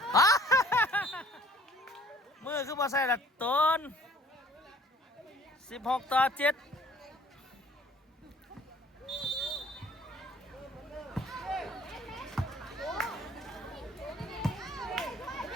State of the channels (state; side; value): normal; both; correlation 0.55